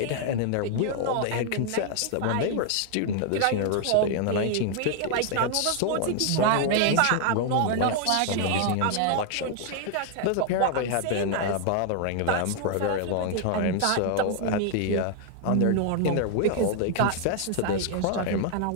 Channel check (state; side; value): different; both; correlation 0.00